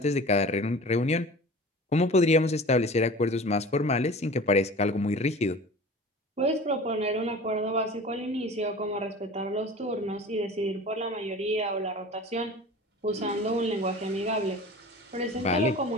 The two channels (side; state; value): both; normal; correlation 0.39